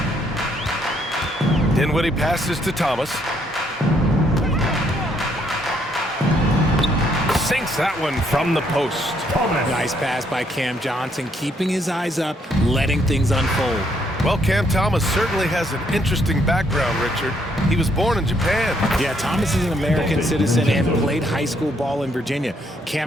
Dinwiddie passes to Thomas. Sinks that one from the post. Nice pass by Cam Johnson, keeping his eyes up, letting things unfold. Well, Cam Thomas certainly has an interesting background, Richard. He was born in Japan. Yeah, Thomas is an American citizen and played high school ball in Virginia.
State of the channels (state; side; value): normal; both; correlation 0.71